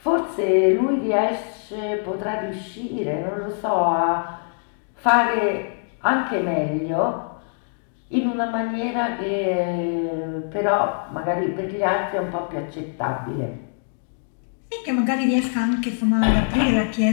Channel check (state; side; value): silent; right; digital silence